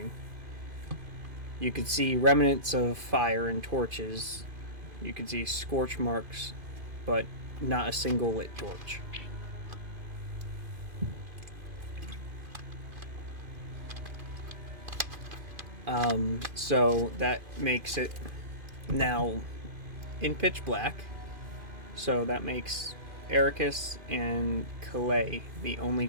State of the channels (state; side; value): late; left; 2.5 ms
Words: You could see remnants of fire and torches. You could see scorch marks, but not a single lit torch. So that makes it now in pitch black. So that makes Ericus and Calais the only